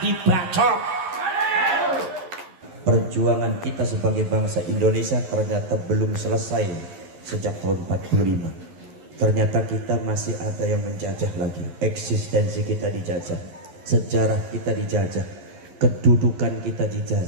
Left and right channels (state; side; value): late; left; 11 ms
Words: Perjuangan kita sebagai bangsa Indonesia ternyata belum selesai sejak tahun 45. Ternyata kita masih ada yang menjajah lagi. Eksistensi kita dijajah, sejarah kita dijajah, kedudukan kita